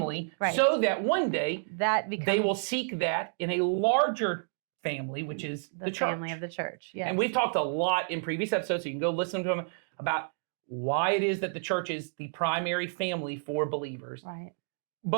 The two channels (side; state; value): left; silent; digital silence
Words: Right. so that one day That becomes they will seek that in a larger family, which is the church. family of the church. Yes. And we've talked a lot in previous episodes, so you can go listen to them, about why it is that the church is the primary family for believers. Right.